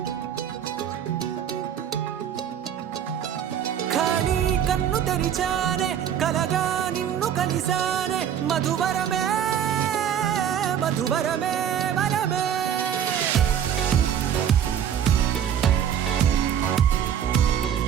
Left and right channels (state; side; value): quieter; left; 9.1 dB